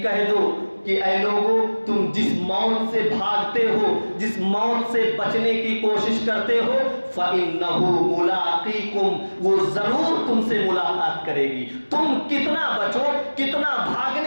کہہ دو کہ اے لوگو تم جس موت سے بھاگتے ہو, جس موت سے بچنے کی کوشش کرتے ہو, فَإِنَّهُ مُلَاقِيكُمْ, وہ ضرور تم سے ملاقات کرے گی. تم کتنا بچو, کتنا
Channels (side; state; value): both; inverted; correlation -1.00